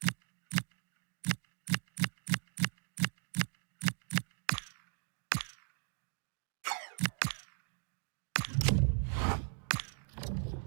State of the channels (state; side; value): silent; left; 52 dB below the other